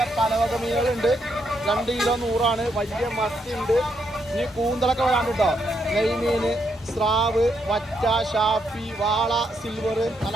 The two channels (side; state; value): both; normal; correlation 0.78